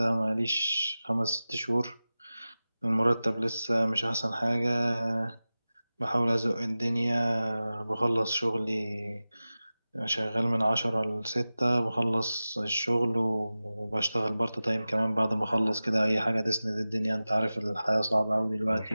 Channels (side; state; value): both; inverted; correlation -0.96